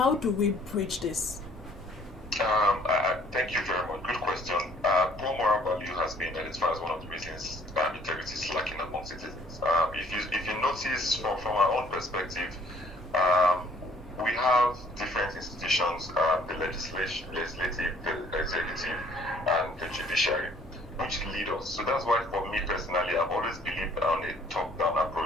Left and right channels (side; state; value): both; normal; correlation 0.59